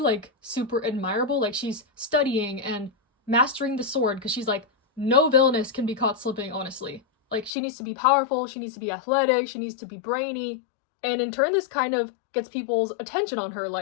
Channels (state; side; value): drops out; right; at 7.5 s